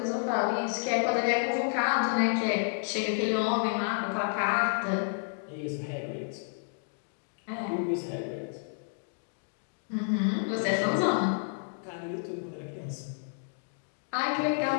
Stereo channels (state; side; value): silent; right; digital silence